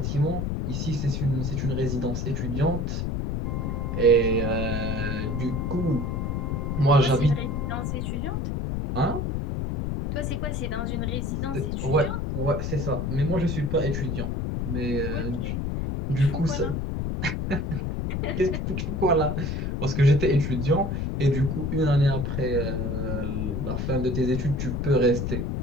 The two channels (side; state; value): left; noise; rumble, 1 dB below the sound